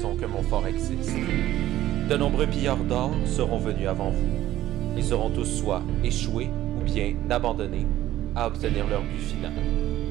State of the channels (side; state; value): left; quieter; 13.9 dB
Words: que mon fort existe. De nombreux pilleurs d'or seront venus avant vous. Ils auront tous soit échoué ou bien abandonné à obtenir leur but final.